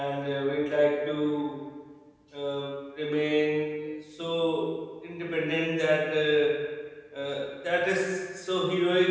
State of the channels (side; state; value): both; identical; correlation 1.00